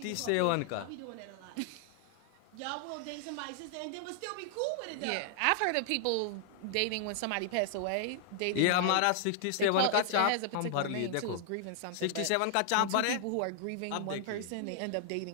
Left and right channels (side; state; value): both; different; correlation 0.00